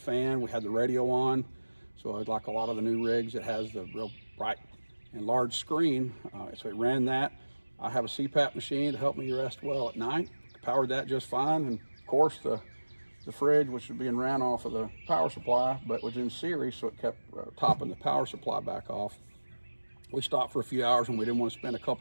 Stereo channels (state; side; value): inverted; both; correlation -1.00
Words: We had the radio on, so like a lot of the new rigs, it has the real bright and large screen, so it ran that. I have a CPAP machine to help me rest well at night. Powered that just fine, and of course the the fridge, which was being ran off of the power supply, but was in series, so it kept topping the power supply back off. We stopped for a few hours and we didn't want to spend a